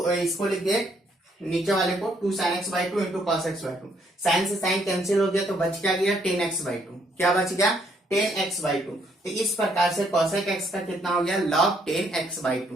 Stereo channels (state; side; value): normal; both; correlation 0.70